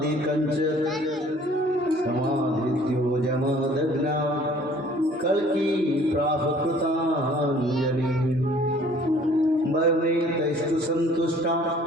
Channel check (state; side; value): normal; both; correlation 0.54